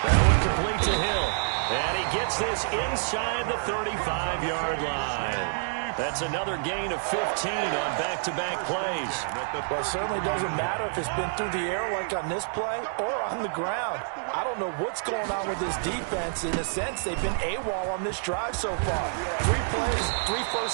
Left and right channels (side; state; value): left; silent; digital silence